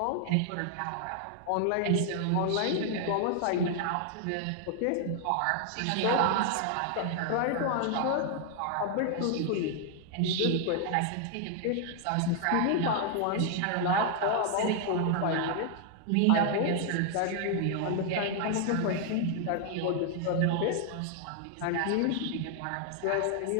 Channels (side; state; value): both; different; correlation 0.00